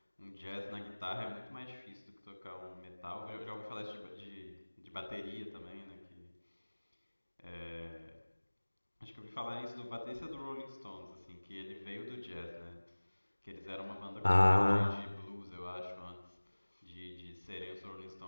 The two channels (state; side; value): inverted; both; correlation -1.00